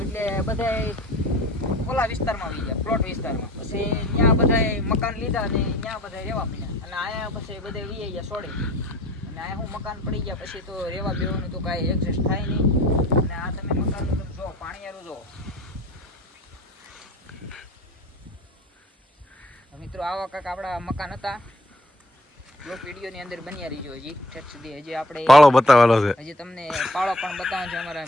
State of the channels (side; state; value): both; normal; correlation 0.50